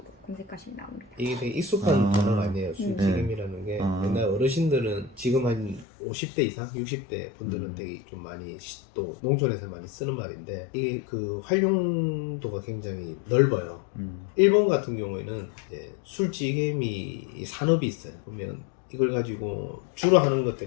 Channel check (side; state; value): right; drops out; at 5.9 s